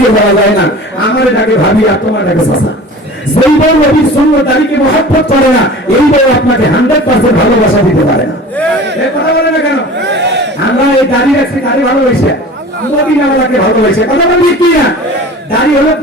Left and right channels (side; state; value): both; normal; correlation 0.39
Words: যাওয়া যায় না, আমার ডাকে ভাবি আর তোমার ডাকে চাচা। যেই বউ নবীর সঙ্গে দাঁড়িয়ে মহব্বত করে না, এই বউ আপনাকে 100% ভালোবাসা দিতে পারে না। কথা বলে না কেন? আমরা এই দাঁড়িয়ে রাখছি, দাঁড়িয়ে ভালোবাসে মদিনাওয়ালাকে ভালোবাসে। কথা বলি কি না? দাড়ি হলো